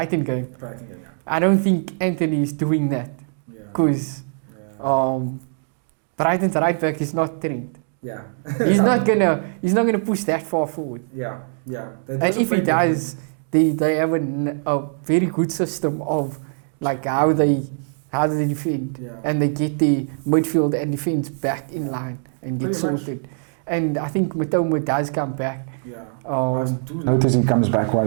game. I don't think Anthony is doing that. Because Brighton's right back is not Trent. Yeah. he's not gonna push that far forward. Yeah. And if he does, they have a very good system of like how they defend, and they get the midfield and defense back in line and get sorted. And I think Matoma does come back. I notice he comes back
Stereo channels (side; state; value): left; silent; digital silence